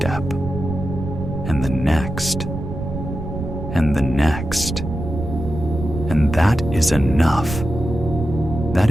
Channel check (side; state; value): right; noise; rumble, 6 dB below the sound